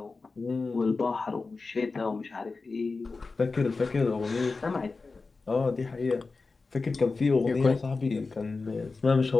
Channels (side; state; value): right; quieter; 4.0 dB